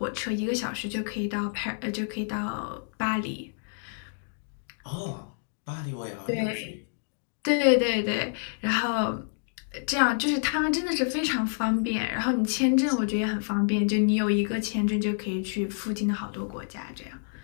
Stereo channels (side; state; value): right; silent; digital silence